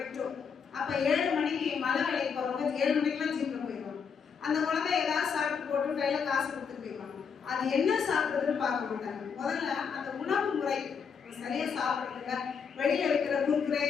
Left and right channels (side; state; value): right; quieter; 6.4 dB